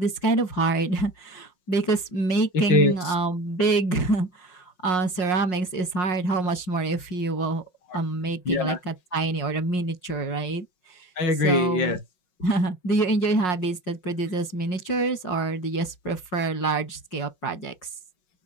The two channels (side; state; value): right; late; 5.5 ms